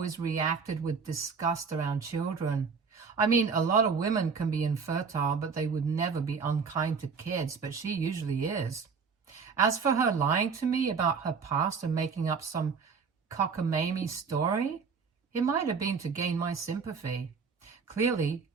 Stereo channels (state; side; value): quieter; left; 5.5 dB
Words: reacted with disgust around children. I mean, a lot of women can be infertile, but they would never be unkind to kids, but she usually is. As for her lying to me about her past and making up some cockamamie story, it might have been to gain my sympathy. Clearly,